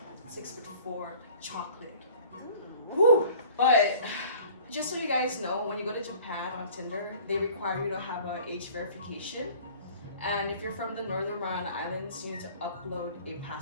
6'4", chocolate. Woo! But just so you guys know, when you go to Japan on Tinder, they require you to have an age verification. And if you're from the Northern Mariana Islands, you need to upload a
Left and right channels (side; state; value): both; inverted; correlation -0.49